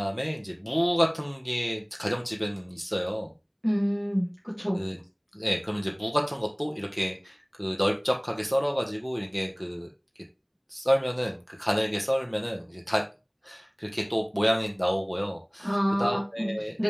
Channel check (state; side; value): identical; both; correlation 1.00